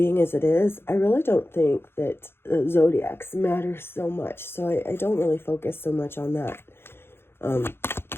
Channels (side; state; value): right; late; 0.11 ms